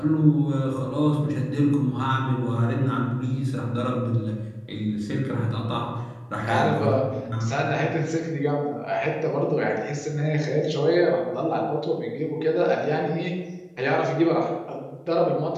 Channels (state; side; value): identical; both; correlation 1.00